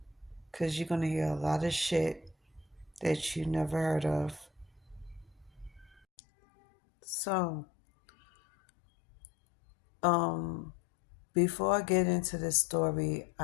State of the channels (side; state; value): right; drops out; at 6.0 s